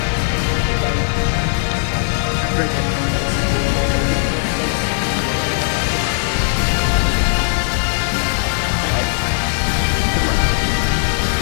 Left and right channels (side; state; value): right; silent; digital silence